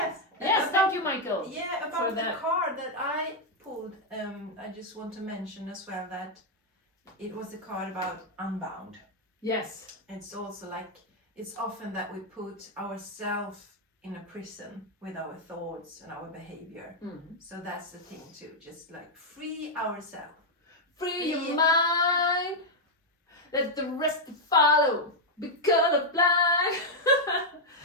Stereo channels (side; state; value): both; normal; correlation -0.02